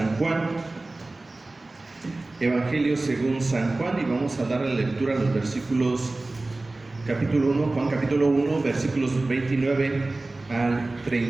Juan. Evangelio según San Juan, y vamos a dar la lectura a los versículos, capítulo 1, Juan capítulo 1, versículos 29 al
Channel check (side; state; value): left; quieter; 3.0 dB